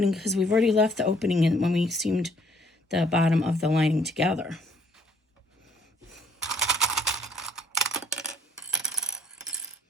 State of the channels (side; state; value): both; normal; correlation 0.62